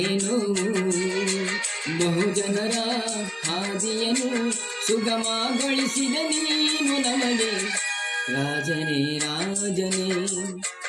ಬಹುಜನರ ಹಾದಿಯನ್ನು ಸುಗಮಗೊಳಿಸಿದ ನೀನು ನಮಗೆ. ರಾಜನೇ ರಾಜನೇ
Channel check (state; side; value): identical; both; correlation 1.00